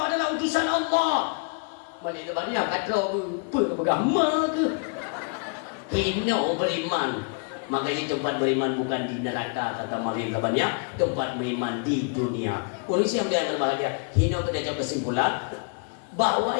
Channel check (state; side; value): quieter; right; 36.7 dB